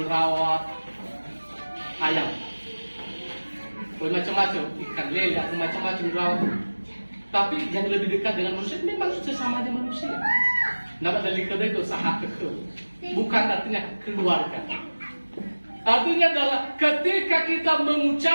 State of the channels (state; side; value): inverted; both; correlation -1.00